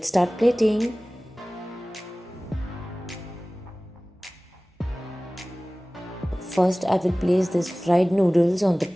start plating. First, I will place these fried noodles on the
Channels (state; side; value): normal; both; correlation 0.98